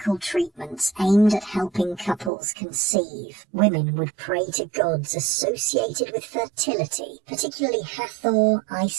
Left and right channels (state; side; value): drops out; left; at 2.3 s